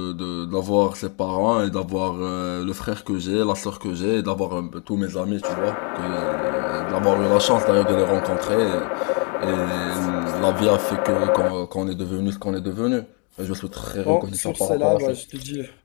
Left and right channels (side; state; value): right; quieter; 34.3 dB